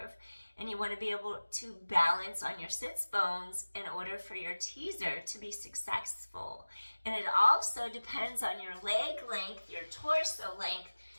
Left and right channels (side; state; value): both; inverted; correlation -1.00